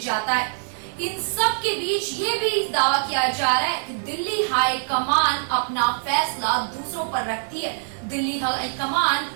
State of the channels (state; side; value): silent; left; digital silence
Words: है। इन सब के बीच ये भी दावा किया जा रहा है कि दिल्ली हाई कमान अपना फैसला दूसरों पर रखती है। दिल्ली हाई कमान